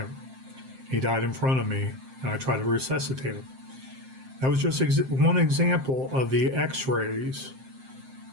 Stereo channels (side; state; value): left; late; 7.6 ms